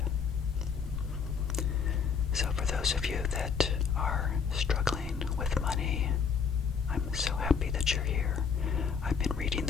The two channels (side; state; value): right; quieter; 6.2 dB